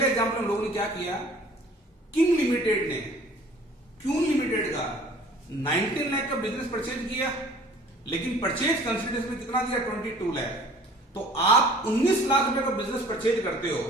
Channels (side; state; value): both; normal; correlation 0.50